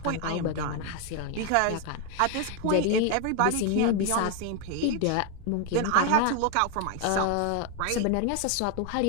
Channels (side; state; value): both; different; correlation 0.00